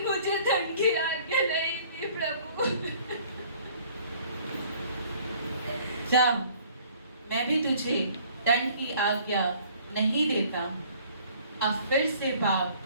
मुझे दंड की आज्ञा नहीं दी प्रभु। जा, मैं भी तुझे दंड की आज्ञा नहीं देता। अब फिर से पाप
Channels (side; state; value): both; inverted; correlation -0.56